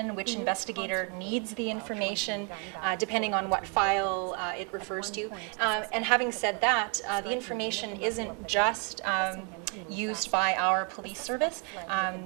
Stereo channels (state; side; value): quieter; left; 37.1 dB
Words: which investigator needs the information, depending on what file it refers to. And having said that, the information isn't just used by our police service.